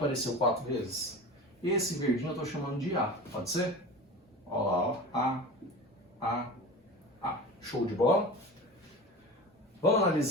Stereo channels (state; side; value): normal; both; correlation 0.33